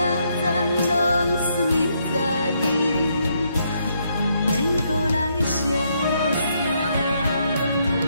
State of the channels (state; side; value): inverted; both; correlation -0.75